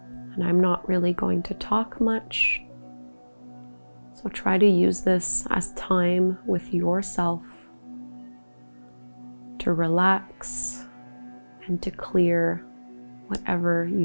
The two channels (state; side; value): inverted; both; correlation -1.00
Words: And I'm not really going to talk much, so try to use this as time with yourself to relax and to clear whatever you